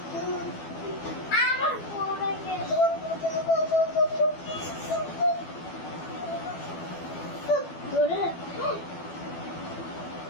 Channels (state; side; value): late; right; 12 ms